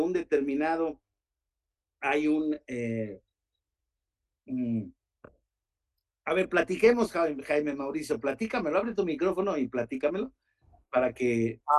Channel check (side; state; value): both; identical; correlation 1.00